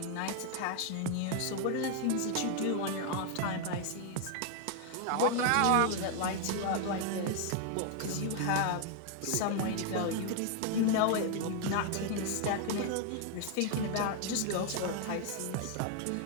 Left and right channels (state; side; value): different; both; correlation 0.00